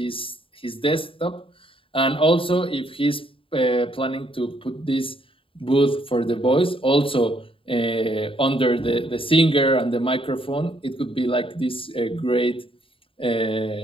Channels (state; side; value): late; right; 0.26 ms